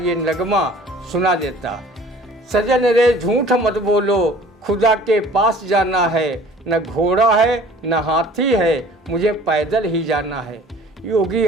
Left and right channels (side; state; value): both; normal; correlation 0.49